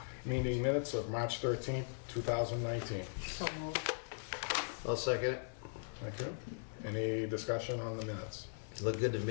minutes of March 13th, 2019. So moved. I'll second it. Thank you. Any discussion on the minutes? It looked good to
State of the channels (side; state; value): right; silent; 52 dB below the other